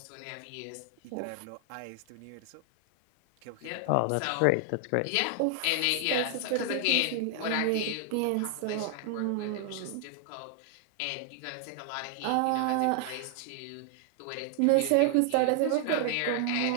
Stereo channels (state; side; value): different; both; correlation 0.00